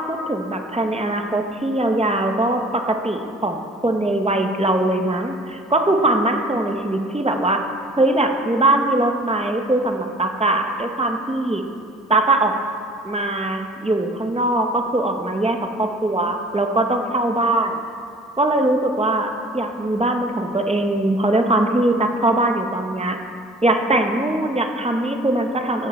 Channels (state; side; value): normal; both; correlation 0.49